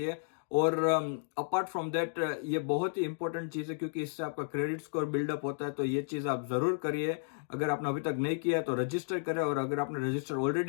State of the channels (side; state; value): right; silent; digital silence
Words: और अपार्ट फ्रॉम दैट ये बहुत ही इंपॉर्टेंट चीज़ है, क्योंकि इससे आपका क्रेडिट स्कोर बिल्डअप होता है। तो ये चीज़ आप ज़रूर करिए। अगर आपने अभी तक नहीं किया है तो रजिस्टर करें, और अगर आपने रजिस्टर